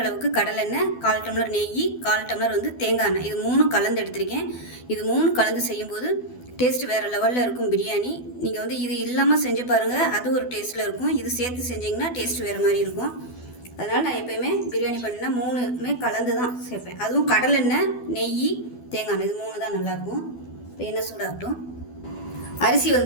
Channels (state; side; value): late; right; 12 ms